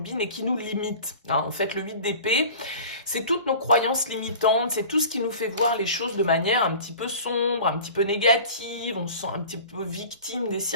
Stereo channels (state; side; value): inverted; both; correlation -0.40